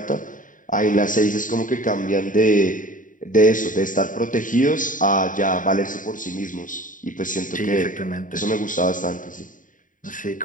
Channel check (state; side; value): late; right; 0.38 ms